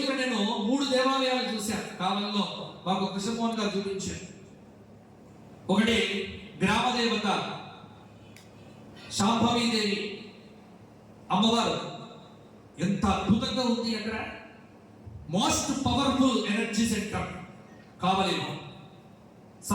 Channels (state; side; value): identical; both; correlation 1.00